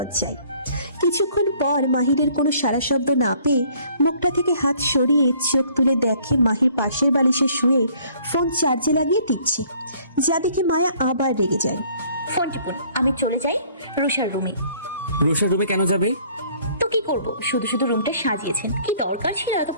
কিছুক্ষণ পর মাহিরের কোনো সারা শব্দ না পেয়ে মুখটা থেকে হাত সরিয়ে চোখ তুলে দেখে মাহির পাশের বালিশে শুয়ে ফোন চার্জে লাগিয়ে দিচ্ছে, যা দেখে মায়া আবার রেগে যায়। ফোন টিপুন, আমি চলে যাই রুষার রুমে। রুষার রুমে কেন যাবে? তো কি করব, শুধু শুধু রুমটা সাজিয়েছেন, কি দরকার ছিল এত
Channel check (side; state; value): both; inverted; correlation -0.58